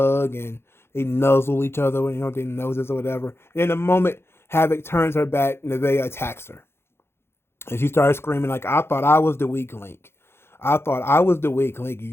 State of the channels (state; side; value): late; right; 0.12 ms